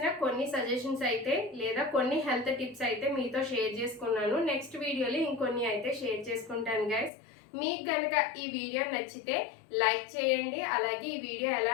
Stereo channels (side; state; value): right; drops out; at 7.1 s